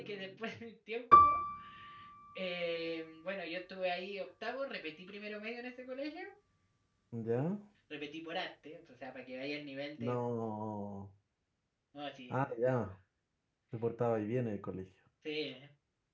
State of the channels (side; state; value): both; identical; correlation 1.00